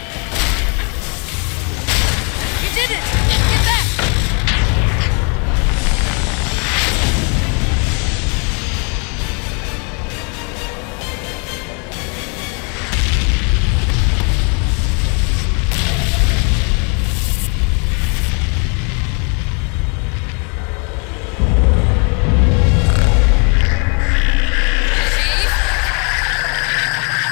You did it! Get back!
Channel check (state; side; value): quieter; right; 36.2 dB